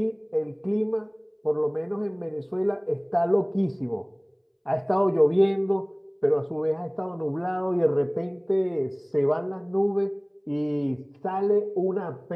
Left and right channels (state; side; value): identical; both; correlation 1.00